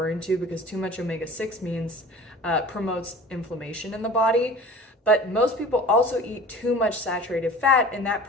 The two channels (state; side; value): normal; both; correlation 0.42